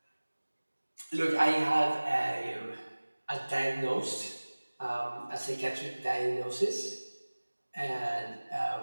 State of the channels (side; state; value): both; inverted; correlation -1.00